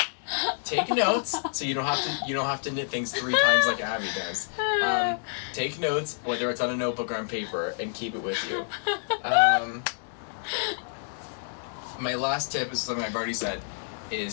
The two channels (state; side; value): silent; right; 59 dB below the other